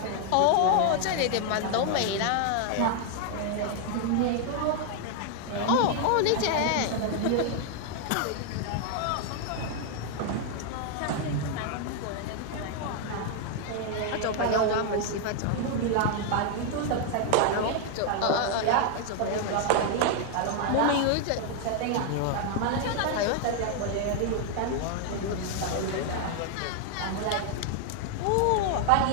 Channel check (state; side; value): different; both; correlation 0.00